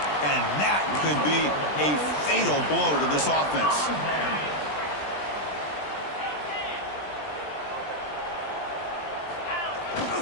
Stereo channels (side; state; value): right; late; 20 ms